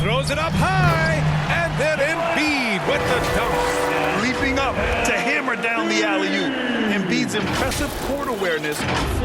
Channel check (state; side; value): identical; both; correlation 1.00